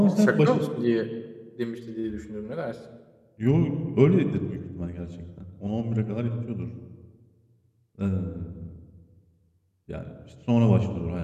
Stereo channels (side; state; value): both; identical; correlation 1.00